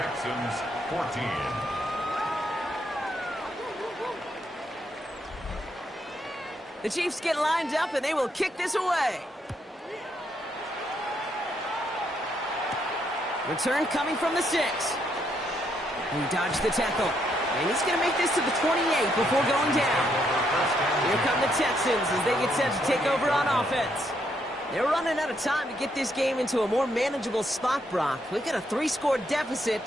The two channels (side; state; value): both; normal; correlation 0.75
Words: 14. The Chiefs get lined up and they will kick this away. Return coming from the 6. He dodged the tackle. And he's going to make this to the 28 before going down. Here come the Texans as they get set to take over on offense. They're running out of time to get this game into a more manageable spot, Brock. We've got a 3-score